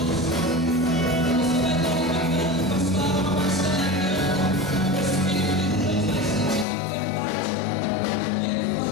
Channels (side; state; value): right; drops out; at 6.7 s